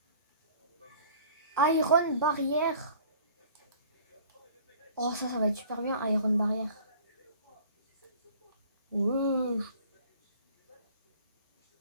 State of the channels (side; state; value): both; inverted; correlation -0.49